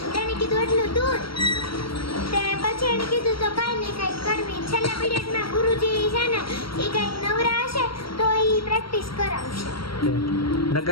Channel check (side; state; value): right; late; 0.74 ms